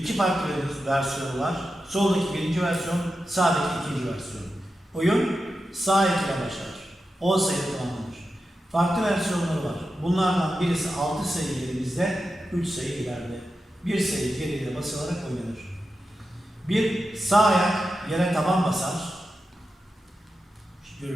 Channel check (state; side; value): normal; both; correlation 0.90